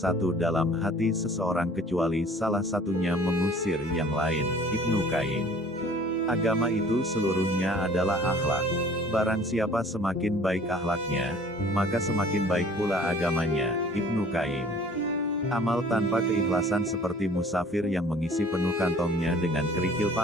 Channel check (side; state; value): both; normal; correlation 0.50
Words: dalam hati seseorang kecuali salah satunya mengusir yang lain. Ibnu Qayyim. Agama itu seluruhnya adalah akhlak. Barang siapa semakin baik akhlaknya, maka semakin baik pula agamanya. Ibnu Qayyim. Amal tanpa keikhlasan seperti musafir yang mengisi penuh kantongnya dengan kerikil